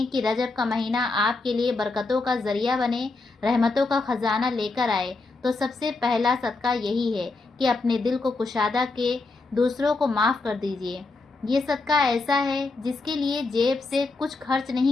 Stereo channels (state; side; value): quieter; right; 3.6 dB